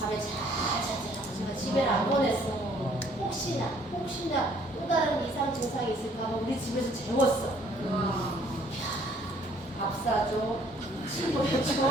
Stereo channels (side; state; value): both; normal; correlation 0.61